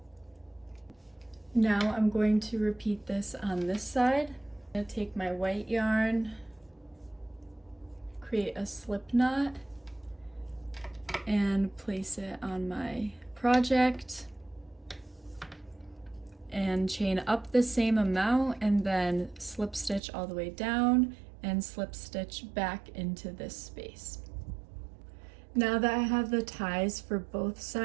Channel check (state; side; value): drops out; left; at 20.0 s